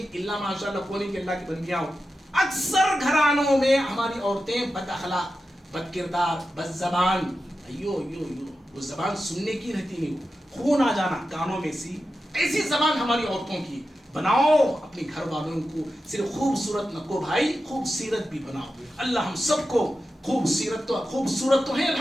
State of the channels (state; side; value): normal; both; correlation 0.91